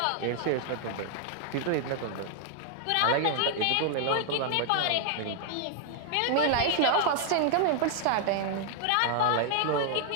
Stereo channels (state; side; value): different; both; correlation 0.00